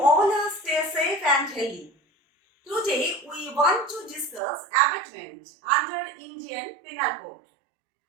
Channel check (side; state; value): left; drops out; at 4.4 s